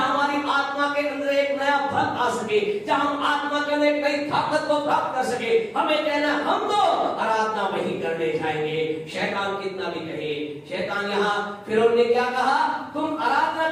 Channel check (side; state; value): both; identical; correlation 1.00